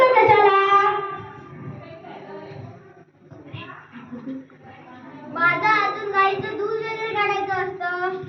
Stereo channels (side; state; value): both; identical; correlation 1.00